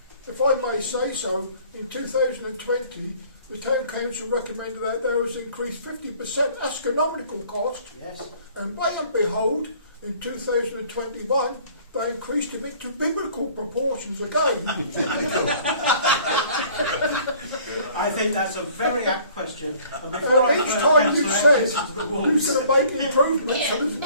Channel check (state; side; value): inverted; both; correlation -0.54